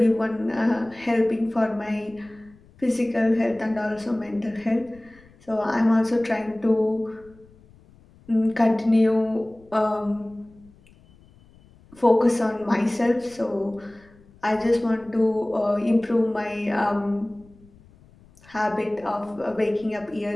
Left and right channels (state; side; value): noise; left; rumble, 27 dB below the sound